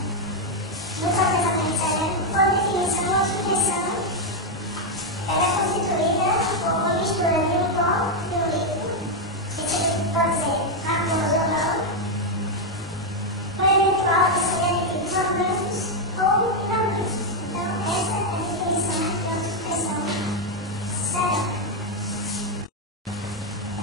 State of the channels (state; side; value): normal; both; correlation 0.02